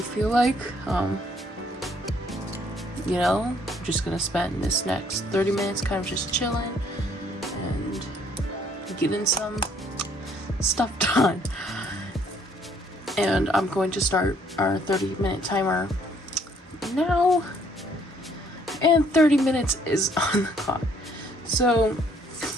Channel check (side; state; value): both; normal; correlation 0.64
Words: feel like. You know, just gonna spend this next 30 minutes kind of just chilling and getting some stuff done. And I'm going to start our 30-minute timer now, and 30 minutes is on the clock. So